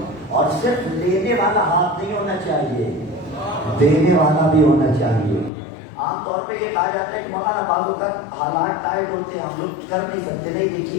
اور صرف لینے والا ہاتھ نہیں ہونا چاہیے, دینے والا بھی ہونا چاہیے. عام طور پہ یہ کہا جاتا ہے کہ مولانا بعضوں کا حالات ٹائٹ ہوتے ہیں, ہم لوگ کر نہیں سکتے. نہیں,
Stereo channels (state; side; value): drops out; right; at 5.5 s